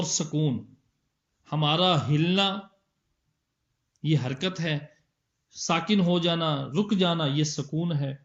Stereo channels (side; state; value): both; identical; correlation 1.00